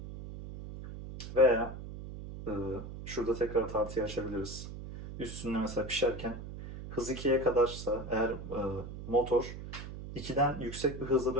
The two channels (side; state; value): right; noise; hum, 10 dB below the sound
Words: Veya şurada tekrar tartıyı açabiliriz. Üstünde mesela pişerken hız 2'ye kadarsa eğer motor 2'den yüksek bir hızla